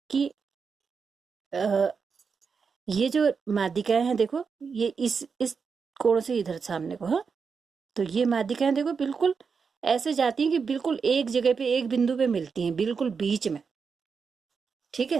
कि ये जो माध्यिकाएं हैं, देखो ये इस कोण से इधर सामने को, हाँ, तो ये माध्यिकाएं देखो बिल्कुल ऐसे जाती हैं कि बिल्कुल एक जगह पे एक बिंदु पे मिलती हैं, बिल्कुल बीच में, ठीक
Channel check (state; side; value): quieter; left; 5.6 dB